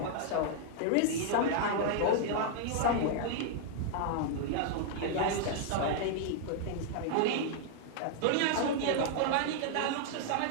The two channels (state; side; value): different; both; correlation -0.01